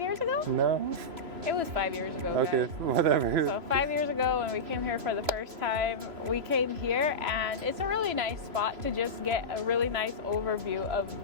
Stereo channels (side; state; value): left; late; 3.0 ms